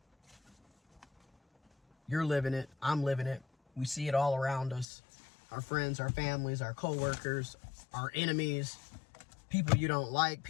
You're living it. I'm living it. We see it all around us. Our friends, our families, our coworkers, our enemies, people you don't like,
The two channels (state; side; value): drops out; right; at 4.9 s